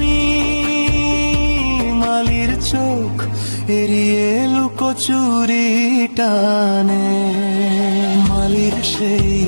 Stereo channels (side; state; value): both; inverted; correlation -1.00